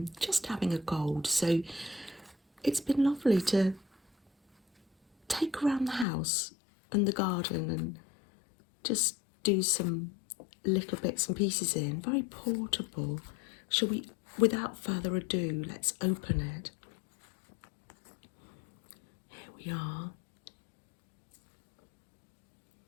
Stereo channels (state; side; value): drops out; right; at 6.1 s